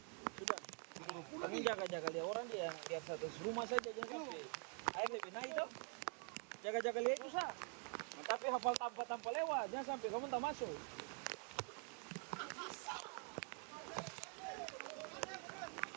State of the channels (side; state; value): left; quieter; 38.7 dB